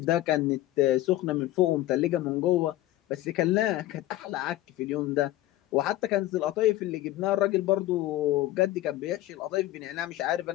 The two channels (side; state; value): right; quieter; 15.4 dB